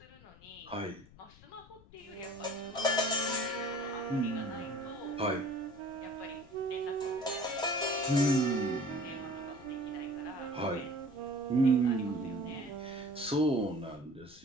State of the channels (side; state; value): left; noise; rumble, 23 dB below the sound